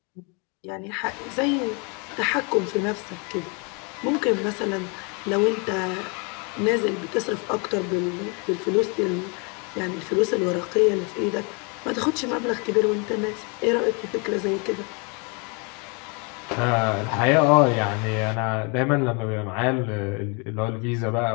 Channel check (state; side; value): quieter; right; 33.3 dB